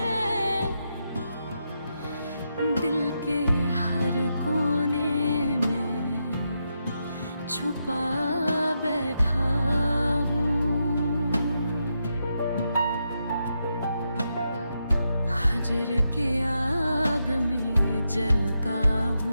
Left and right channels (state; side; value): inverted; both; correlation -0.84